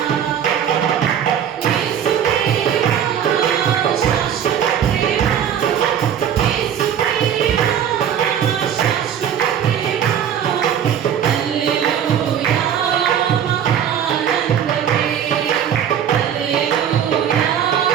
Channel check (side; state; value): left; quieter; 9.1 dB